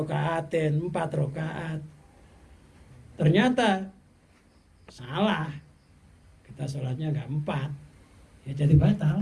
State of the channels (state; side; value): identical; both; correlation 1.00